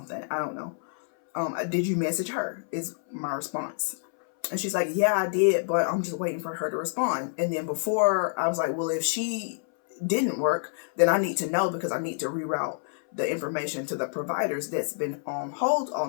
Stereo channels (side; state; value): right; silent; 60 dB below the other